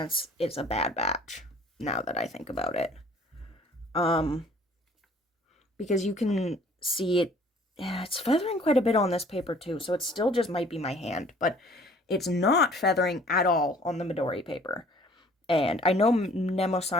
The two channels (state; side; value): normal; both; correlation 0.54